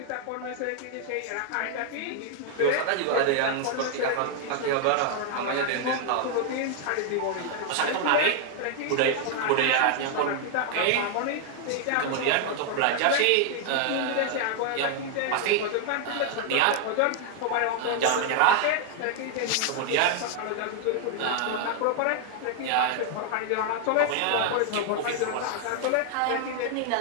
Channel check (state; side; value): different; both; correlation 0.00